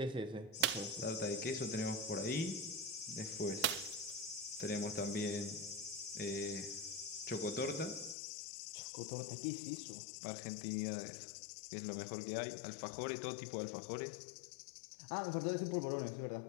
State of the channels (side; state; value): right; drops out; at 8.2 s